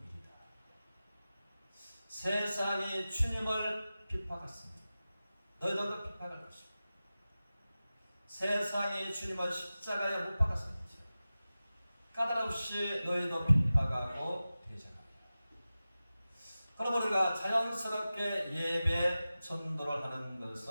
세상이 주님을 핍박했습니다. 너희들도 핍박할 것이다. 세상이 주님을 십자가에 못 박았습니다. 까닭없이 너희도 핍박하고 대적하고. 그럼 우리가 자연스럽게 예배 전도를 하는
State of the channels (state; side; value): inverted; both; correlation -0.95